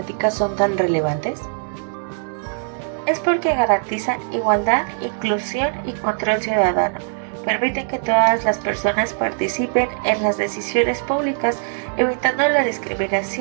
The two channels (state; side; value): silent; left; digital silence